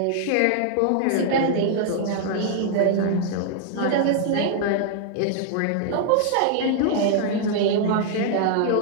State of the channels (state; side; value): different; both; correlation -0.01